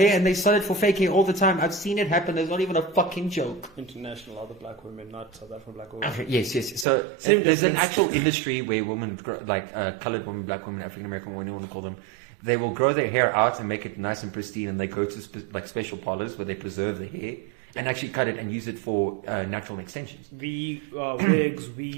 and they sell it for fake hair all the time. I've seen it happen. There's not even a fucking joke. International other black women, not South African black women. Okay, yes. So there's an actual industry where women, like colored women, black women, African American women, whatever you want to call them, they will grow their hair out and make it nice and pristine, and they go to special parlors where they preserve the hair and actually cut it and use it for natural extensions. Wigs,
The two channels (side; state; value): left; drops out; at 6.9 s